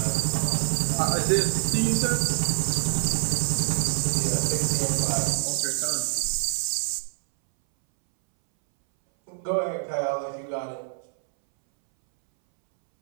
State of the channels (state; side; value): silent; left; 61 dB below the other